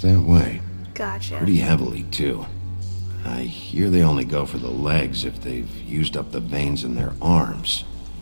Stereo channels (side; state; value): both; inverted; correlation -1.00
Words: that way. Gotcha. Pretty heavily, too. I hear they only go for the legs if they've used up the veins in their arms,